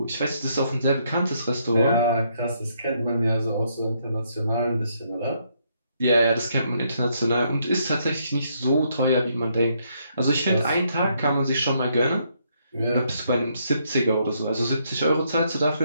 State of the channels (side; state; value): both; inverted; correlation -0.73